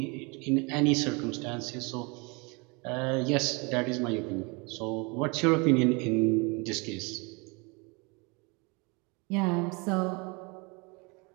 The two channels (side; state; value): left; quieter; 29.6 dB